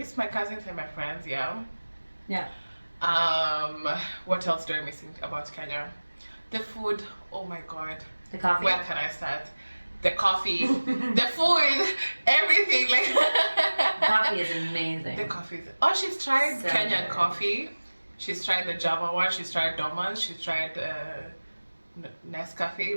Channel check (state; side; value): inverted; both; correlation -1.00